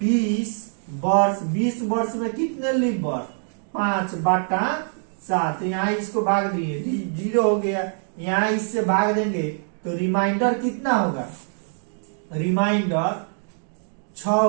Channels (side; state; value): left; silent; 63 dB below the other